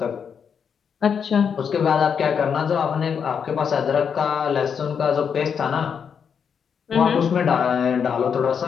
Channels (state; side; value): quieter; right; 7.0 dB